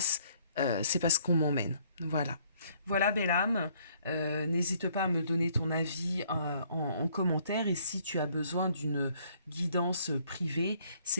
c'est parce qu'on m'emmène. Voilà. Voilà, belle âme, n'hésite pas à me donner ton avis en commentaire, et si tu as besoin d'une guidance privée,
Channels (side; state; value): both; inverted; correlation -0.64